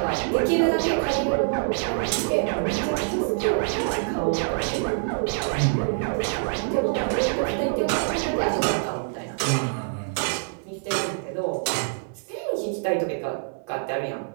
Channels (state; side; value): silent; left; 61 dB below the other